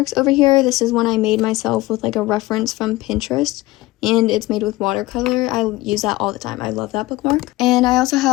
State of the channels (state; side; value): quieter; right; 19.0 dB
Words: over here. This is one I made myself with like a reference from Pinterest. and it's made with watercolor. I use that all the time. I love that bookmark. And I also